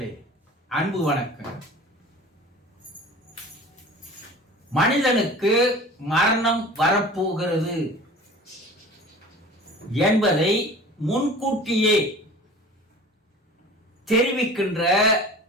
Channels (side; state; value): both; normal; correlation 0.41